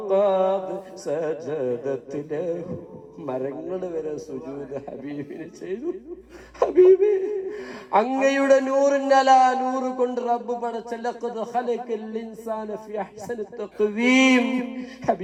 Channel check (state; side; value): identical; both; correlation 1.00